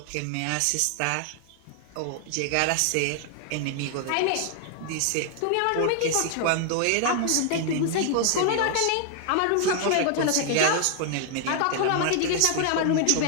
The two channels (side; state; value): both; different; correlation 0.00